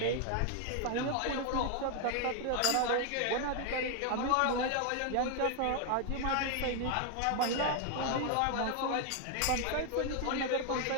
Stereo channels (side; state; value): both; different; correlation 0.01